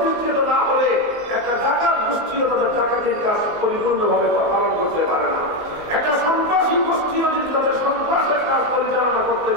না হলে একটা ডাকাত গোষ্ঠীও তাদের ডাকাতির কাজ পরিপূর্ণভাবে পালন করতে পারে না। একটা সন্ত্রাসী গোষ্ঠীও যদি তাদের সন্ত্রাসের কাজ পরিচালনা করতে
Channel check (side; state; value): left; late; 19 ms